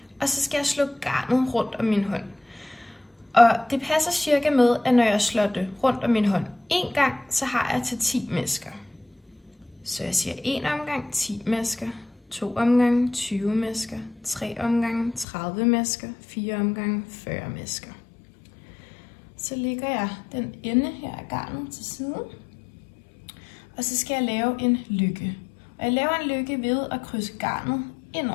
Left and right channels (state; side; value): drops out; right; at 15.2 s